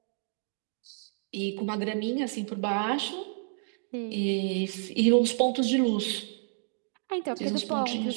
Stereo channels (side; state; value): left; silent; digital silence